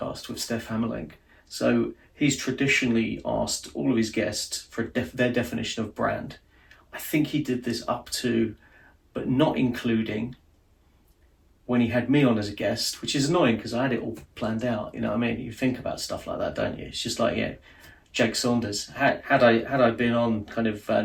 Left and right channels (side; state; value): both; identical; correlation 1.00